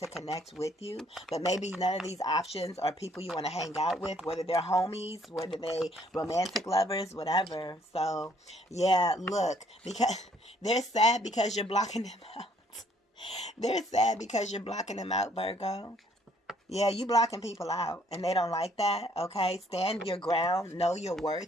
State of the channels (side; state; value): both; normal; correlation 0.64